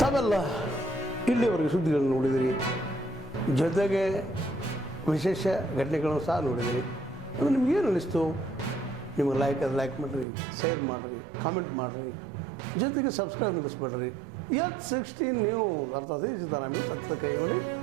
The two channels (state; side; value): drops out; left; at 10.2 s